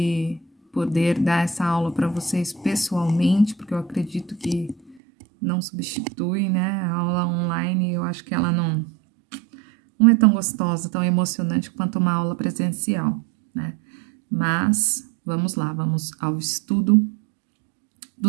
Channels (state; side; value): drops out; left; at 5.0 s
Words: poder dar essa aula para vocês pessoalmente, porque eu acredito que não substitui, né? A aula online, eu acho que ela não é tão gostosa, tão emocionante quanto uma aula presencial, né? Mas vamos lá, vamos ao estudo